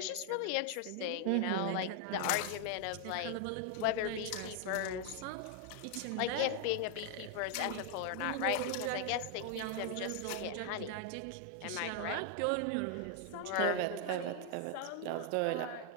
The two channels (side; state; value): both; different; correlation 0.00